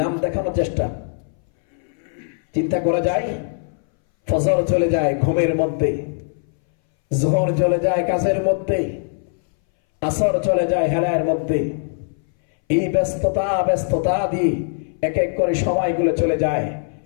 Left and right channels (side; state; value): right; silent; 62 dB below the other